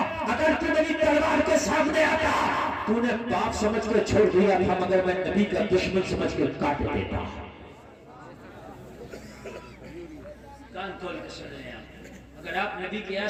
اگر تو میری تلوار کے سامنے آتا تو نے باپ سمجھ کر چھوڑ دیا تھا، مگر میں نبی کا دشمن سمجھ کر کاٹ دیتا۔ کان کھول کے سن لیں آپ، اگر آپ نبی کے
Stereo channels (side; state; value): both; identical; correlation 1.00